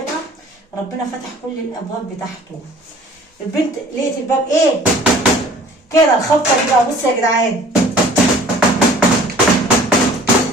ربنا فتح كل الابواب بتاعته. البنت لقيت الباب ايه كده الخبطه دي بقى. بصوا يا جدعان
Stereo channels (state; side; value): normal; both; correlation 0.50